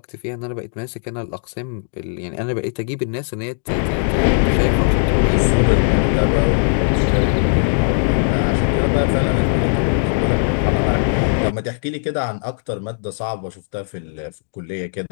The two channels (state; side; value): silent; right; digital silence